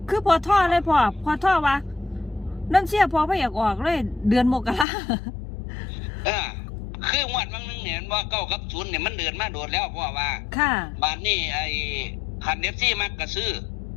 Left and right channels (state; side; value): drops out; right; at 4.9 s